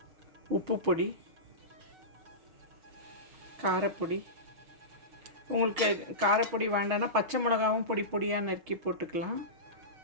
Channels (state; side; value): late; left; 6.3 ms